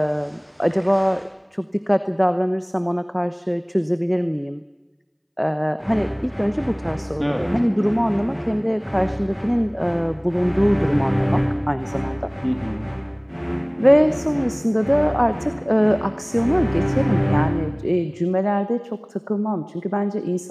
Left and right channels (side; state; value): both; identical; correlation 1.00